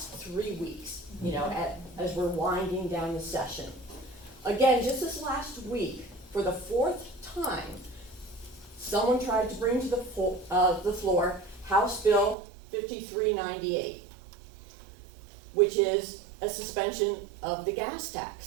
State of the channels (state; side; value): drops out; left; at 12.4 s